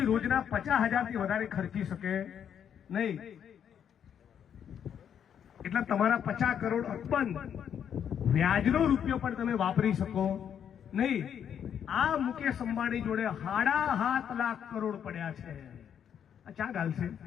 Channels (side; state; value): right; quieter; 8.6 dB